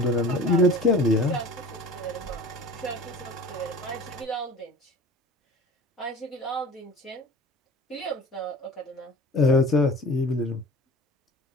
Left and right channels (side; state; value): both; normal; correlation 0.40